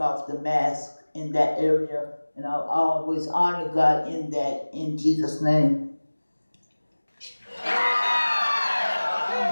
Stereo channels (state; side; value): inverted; both; correlation -1.00